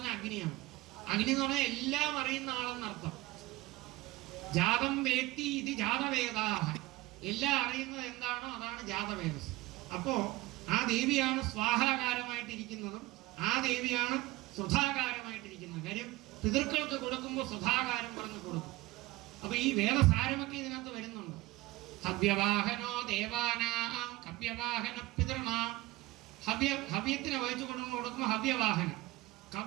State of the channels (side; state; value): left; quieter; 19.4 dB